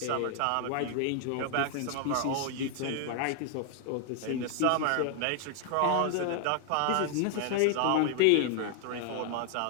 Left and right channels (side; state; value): both; different; correlation 0.00